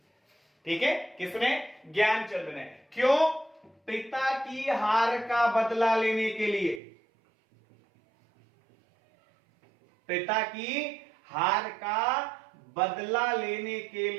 ठीक है। किसने? ज्ञानचंद ने। क्यों? पिता की हार का बदला लेने के लिए। पिता की हार का बदला लेने के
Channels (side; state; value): left; drops out; at 6.8 s